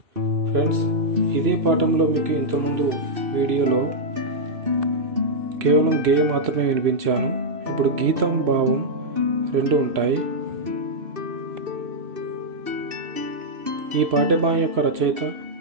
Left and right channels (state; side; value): late; left; 2.6 ms